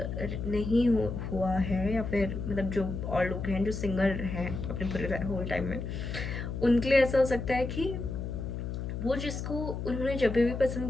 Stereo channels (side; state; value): left; noise; hum, 5 dB below the sound